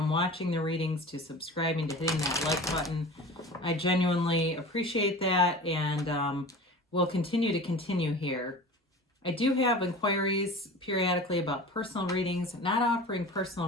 watching the readings to subscribing to hitting that like button. I genuinely appreciate that, and we'll continue here. I do have inquiries periodically about personal readings, not offering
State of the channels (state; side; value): normal; both; correlation 0.36